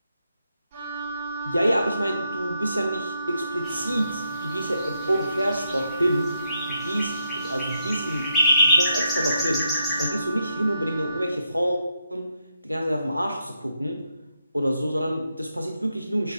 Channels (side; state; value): both; inverted; correlation -0.81